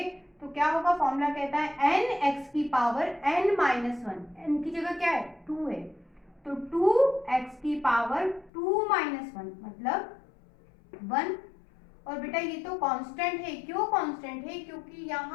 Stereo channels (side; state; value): right; drops out; at 8.5 s